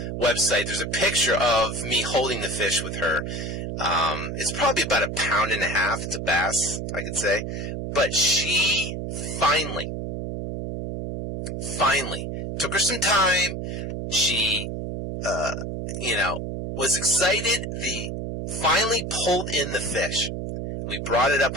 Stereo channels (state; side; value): noise; right; hum, 5 dB below the sound